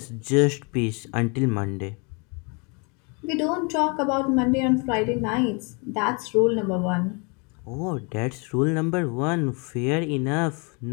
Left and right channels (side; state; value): right; quieter; 33.0 dB